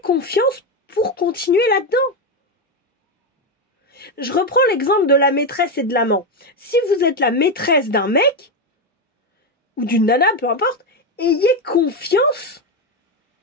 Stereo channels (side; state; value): both; normal; correlation 0.10